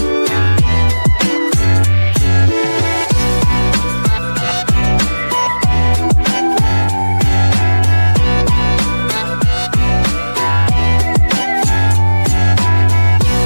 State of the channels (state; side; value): inverted; both; correlation -1.00